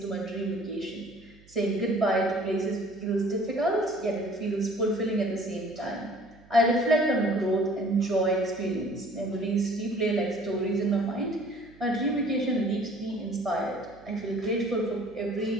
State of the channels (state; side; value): noise; right; hum, 26 dB below the sound